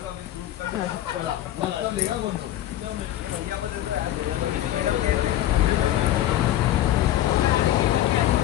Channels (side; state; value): right; quieter; 13.1 dB